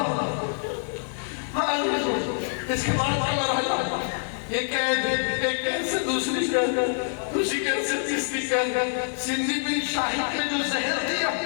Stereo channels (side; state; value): right; silent; digital silence